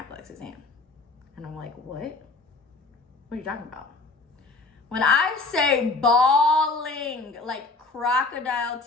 exam. And I'm like, what? What are you talking about? When I say bawling, like crocodile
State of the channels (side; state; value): right; quieter; 3.6 dB